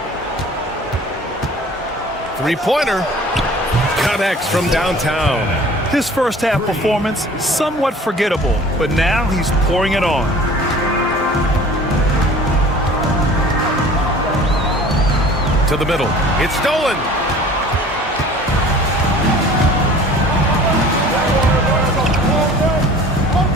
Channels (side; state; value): both; normal; correlation 0.47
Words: Three-pointer. Connects from downtown. His first half performance, somewhat forgettable, but now he's pouring it on. To the middle. It's stolen.